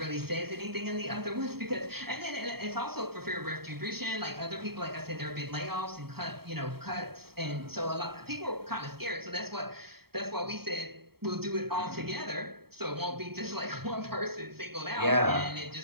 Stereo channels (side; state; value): left; late; 0.95 ms